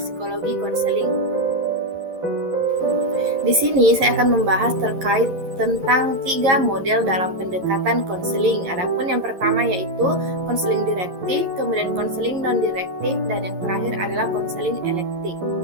Psikologi Konseling. Di sini saya akan membahas terkait tentang 3 model dalam pendekatan konseling. Adapun yang pertama yaitu konseling direktif, kemudian konseling non-direktif, dan yang terakhir adalah konseling elektif.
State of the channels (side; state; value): left; late; 11 ms